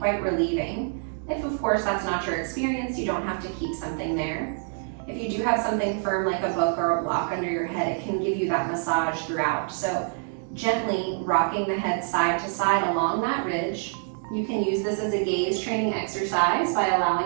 relieving. If of course that's not your experience, you don't have to keep something there. If you do have something firm like a book or a block under your head, it can give you that massage throughout. So gently rocking the head side to side along that ridge. You can use this as a gaze training exercise by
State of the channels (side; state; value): left; silent; 61 dB below the other